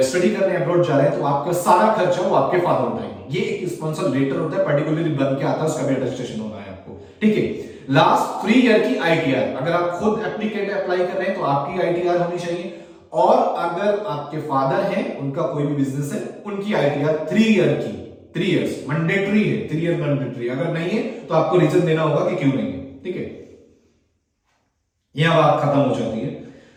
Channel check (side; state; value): both; identical; correlation 1.00